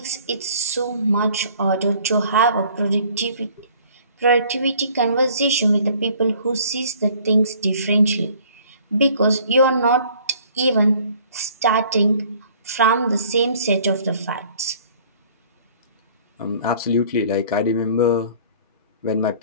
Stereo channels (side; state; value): both; inverted; correlation -0.55